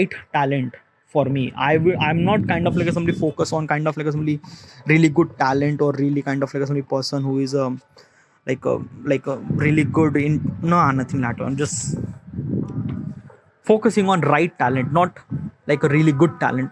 talent for me. I'm not kind of like a somebody focus on kind of like a somebody really good talent, or really kind of like a somebody person who is like a really good in, no, nothing like that. I'm just focusing on right talent, not like a really good talent,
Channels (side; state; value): both; identical; correlation 1.00